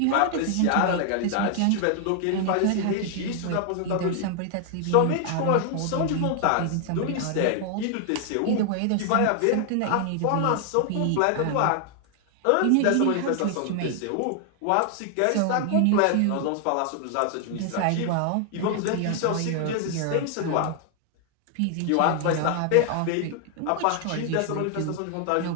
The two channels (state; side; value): different; both; correlation 0.00